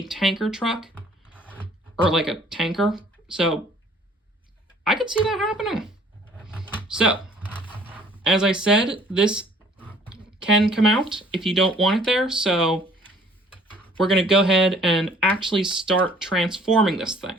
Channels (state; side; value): normal; both; correlation 0.56